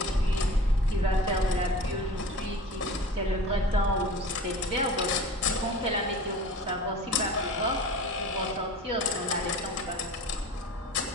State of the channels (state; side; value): normal; both; correlation 0.38